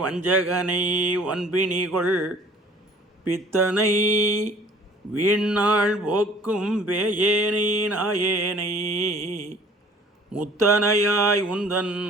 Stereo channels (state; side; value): normal; both; correlation 0.52